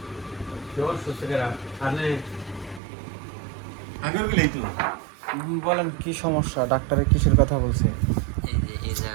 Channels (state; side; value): drops out; left; at 2.8 s